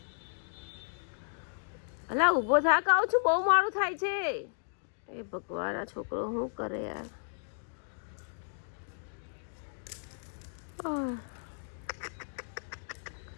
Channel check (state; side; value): silent; right; digital silence